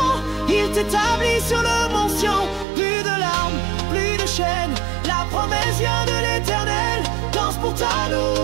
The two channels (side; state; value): left; drops out; at 2.7 s